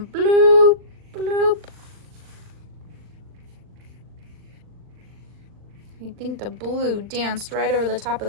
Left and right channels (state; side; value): late; left; 39 ms